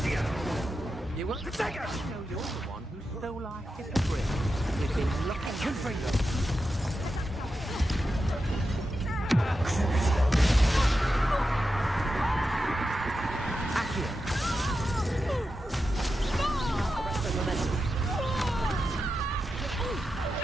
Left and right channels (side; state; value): both; normal; correlation 0.89